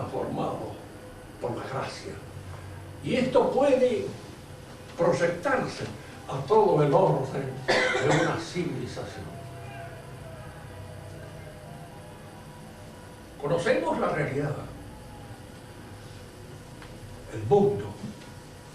por la gracia. Y esto puede proyectarse a todo el orden de una civilización. Conocemos la realidad, el mundo,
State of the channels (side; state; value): both; identical; correlation 1.00